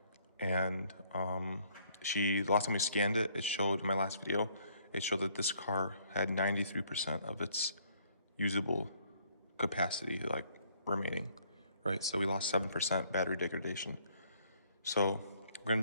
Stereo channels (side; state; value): both; inverted; correlation -0.64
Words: and last time we scanned it, it showed, in my last video, it showed that this car had 93% of its usable capacity, like, remaining, right? So we lost 7% battery degradation. So we're gonna